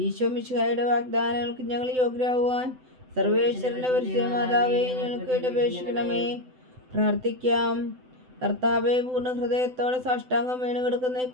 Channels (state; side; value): late; left; 7.9 ms